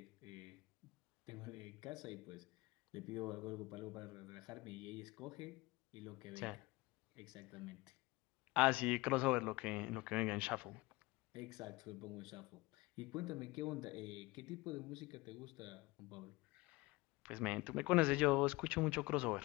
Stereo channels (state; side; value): quieter; right; 22.0 dB